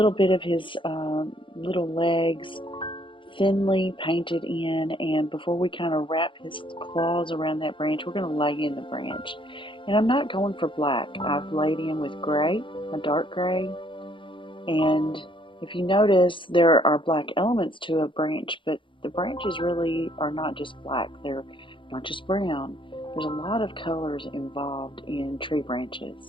bit of his little legs thinly painted in, and before we kind of wrap his claws around that branch, we're going to lay in the branch. And I'm not going for black. I've laid in with gray, a dark gray, and if you notice, there are black elements to a branch, but the branches really are not just black. They're not just brown. There's a lot of colors involved in tree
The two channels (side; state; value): right; late; 0.24 ms